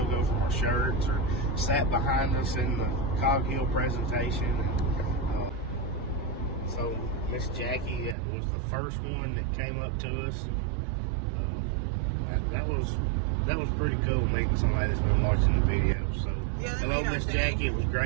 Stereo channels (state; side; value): drops out; left; at 8.2 s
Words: from our shirts, or sat behind us in the Cog Hill presentation. And, so Miss Jackie was the first one that came up to us. That was pretty cool, meeting somebody that's been watching the video. So hello, Miss Jackie. It was